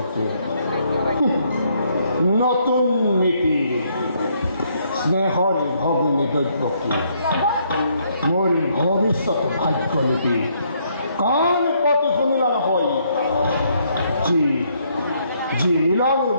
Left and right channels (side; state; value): both; inverted; correlation -0.71